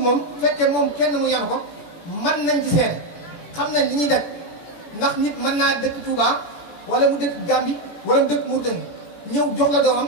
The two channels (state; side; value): late; right; 17 ms